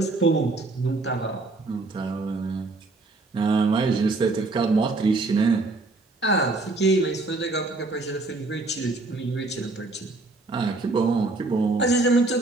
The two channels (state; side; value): quieter; left; 3.3 dB